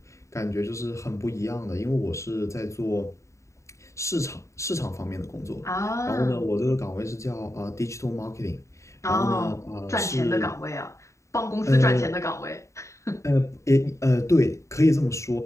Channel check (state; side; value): late; right; 0.14 ms